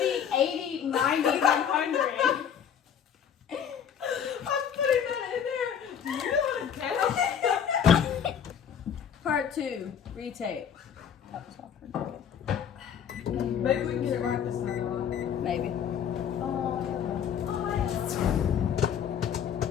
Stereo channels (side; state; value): right; quieter; 8.3 dB